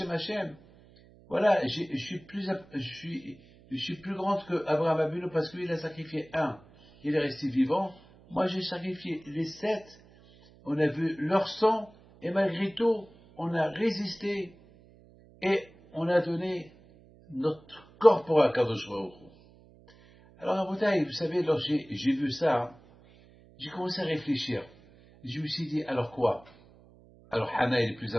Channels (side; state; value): right; noise; hum, 25 dB below the sound